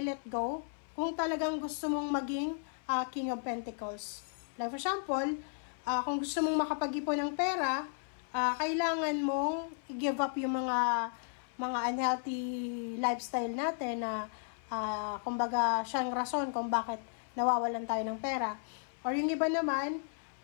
go kung talagang gusto mong maging King of Pentacles. Like for example, kung gusto mong makapag-ipon ng pera, kailangan mong i-give up yung mga unhealthy lifestyle natin na kumbaga siyang rason kung bakit nawawalan tayo ng pera. Or yung iba naman,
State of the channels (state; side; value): silent; right; 55 dB below the other